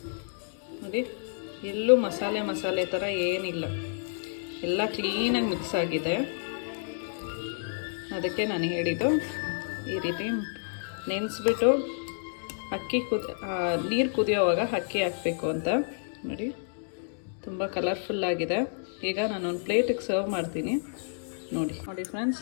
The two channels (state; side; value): silent; right; digital silence